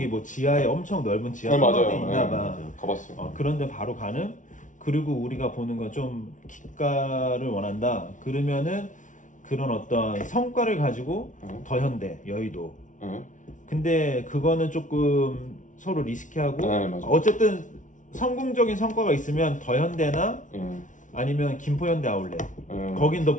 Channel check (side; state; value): right; late; 0.37 ms